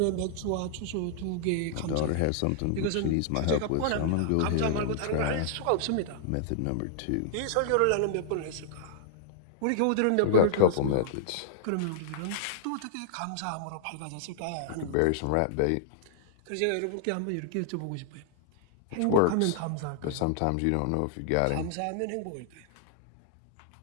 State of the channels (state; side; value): different; both; correlation -0.01